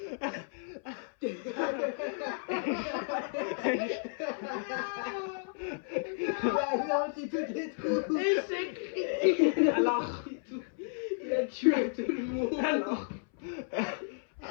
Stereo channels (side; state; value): right; silent; 56 dB below the other